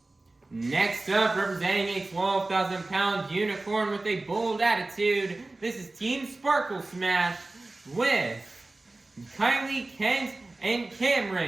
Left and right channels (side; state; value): left; quieter; 3.0 dB